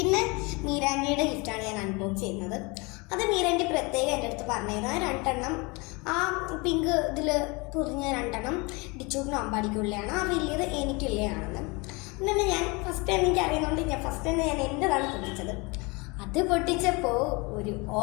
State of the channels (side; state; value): right; quieter; 27.3 dB